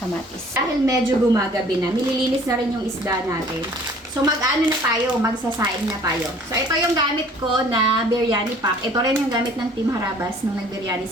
kamatis. Dahil medyo gumagabi na, nililinis na rin yung isda natin. So, mag-ano na tayo, magsasaing na tayo. So, ito yung gamit ko na biryani pack. Ito rin yung gamit ng Team Harabas nung nagbiryani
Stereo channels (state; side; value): normal; both; correlation 0.52